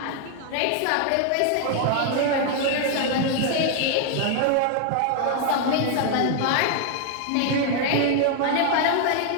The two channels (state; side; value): different; both; correlation 0.00